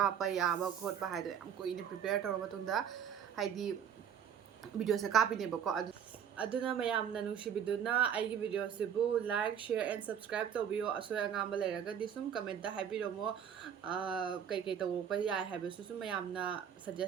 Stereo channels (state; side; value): quieter; left; 8.4 dB